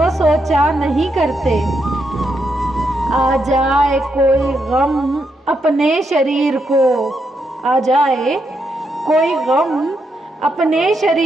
सोचा नहीं करते। आ जाए कोई गम अपने शरीर को, आ जाए कोई गम अपने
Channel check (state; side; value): normal; both; correlation 0.81